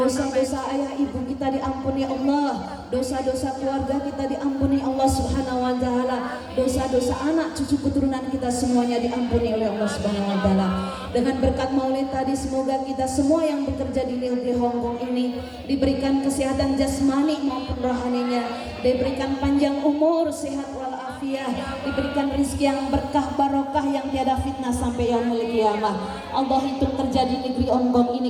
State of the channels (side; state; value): both; identical; correlation 1.00